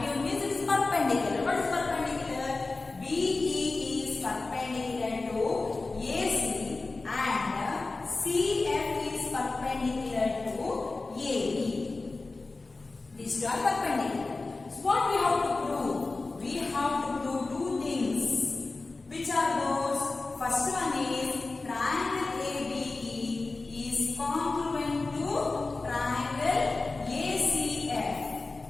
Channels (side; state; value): right; quieter; 3.5 dB